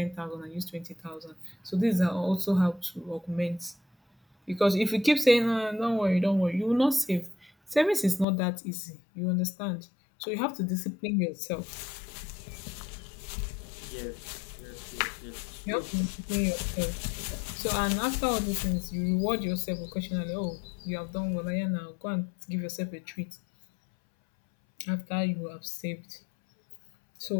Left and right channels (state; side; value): drops out; right; at 8.2 s